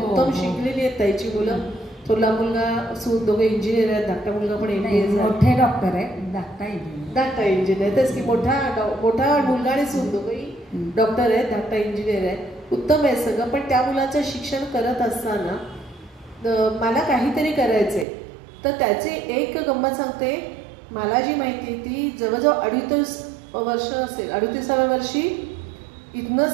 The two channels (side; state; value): left; drops out; at 18.1 s